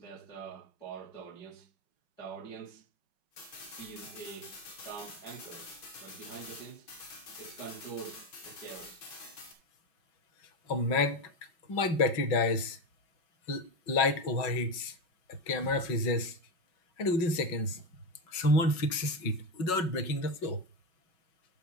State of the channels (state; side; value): late; right; 5.4 ms